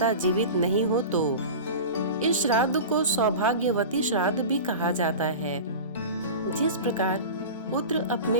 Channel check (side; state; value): both; inverted; correlation -0.31